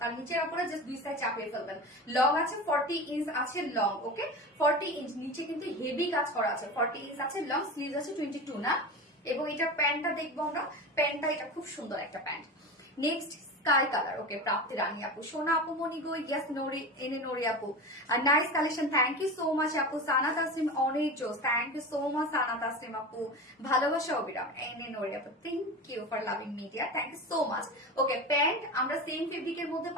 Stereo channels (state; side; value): normal; both; correlation 0.27